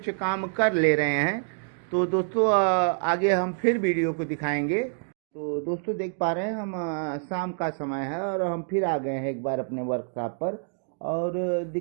काम कर ले रहे हैं। तो दोस्तों आगे हम फिर वीडियो को दिखाएंगे। तो दोस्तों देख पा रहे हैं हम शाम का समय है और हम फिर आ गए हैं एक बार अपने वर्कशॉप पर और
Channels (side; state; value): left; silent; digital silence